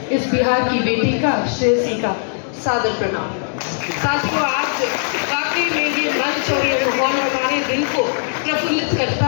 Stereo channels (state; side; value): silent; right; digital silence